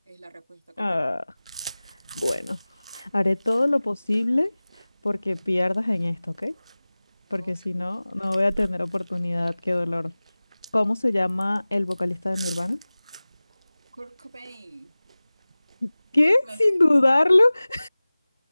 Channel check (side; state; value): both; inverted; correlation -0.99